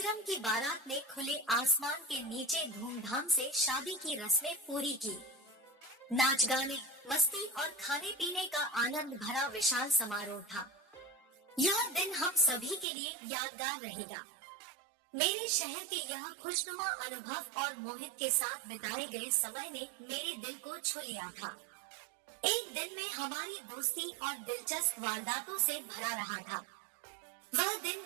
की बारात ने खुले आसमान के नीचे धूमधाम से शादी की रस्में पूरी की। नाच गाने, मस्ती और खाने पीने का आनंद भरा विशाल समारोह था। यह दिन हम सभी के लिए यादगार रहेगा। मेरे शहर के यह खुशनुमा अनुभव और मोहित के साथ बिताए गए समय ने मेरे दिल को छू लिया था। एक दिन में हमारी दोस्ती और दिलचस्प वारदातों से भरा रहा था। वह दिन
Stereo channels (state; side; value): drops out; left; at 12.9 s